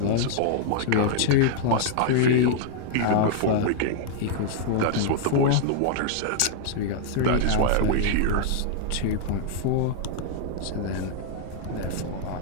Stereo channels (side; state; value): both; different; correlation -0.01